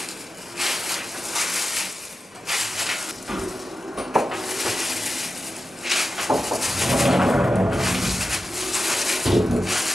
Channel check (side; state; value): both; normal; correlation 0.92